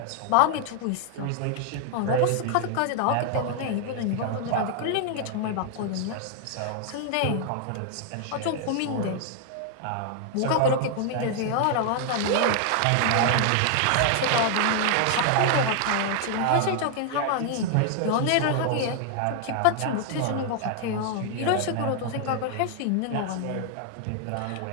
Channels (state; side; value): different; both; correlation 0.00